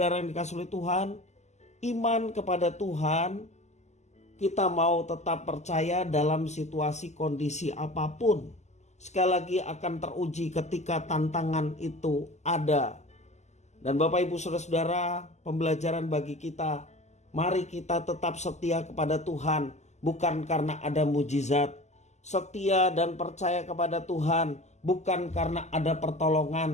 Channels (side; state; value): right; late; 0.33 ms